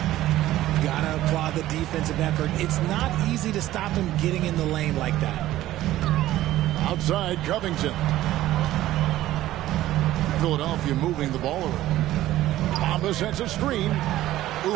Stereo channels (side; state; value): left; quieter; 14.7 dB